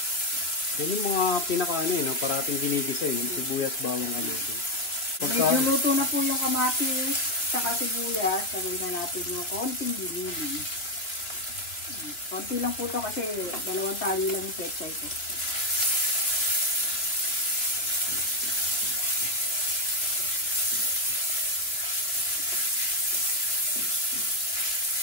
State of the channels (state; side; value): late; right; 3.2 ms